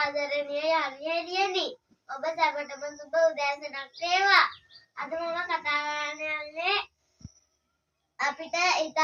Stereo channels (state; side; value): identical; both; correlation 1.00